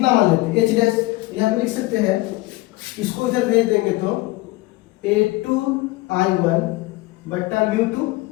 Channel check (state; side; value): quieter; right; 20.0 dB